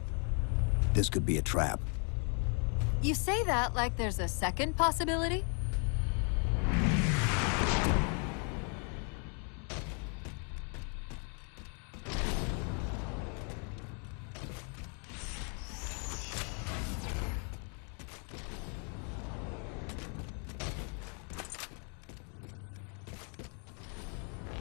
This could be a trap. You say that like there's a second possibility?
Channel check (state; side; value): quieter; right; 38.8 dB